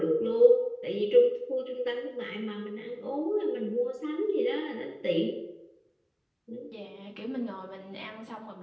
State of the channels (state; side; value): identical; both; correlation 1.00